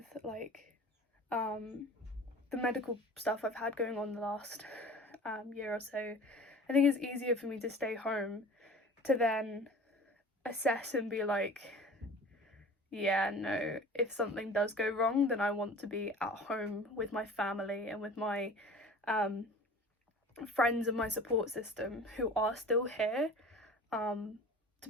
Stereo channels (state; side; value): normal; both; correlation 0.41